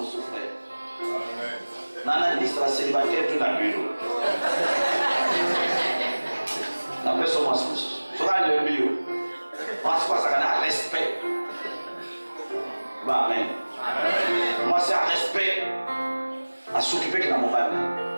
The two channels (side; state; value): both; inverted; correlation -1.00